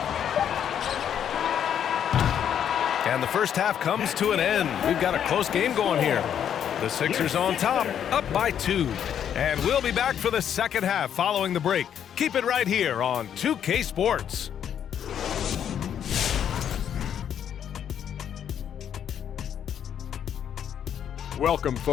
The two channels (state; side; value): quieter; right; 9.1 dB